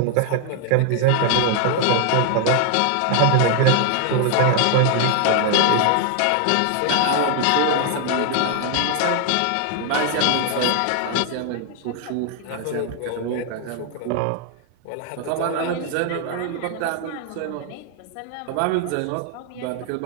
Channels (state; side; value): different; both; correlation 0.00